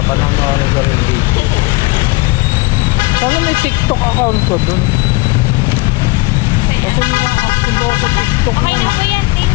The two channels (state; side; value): quieter; right; 24.4 dB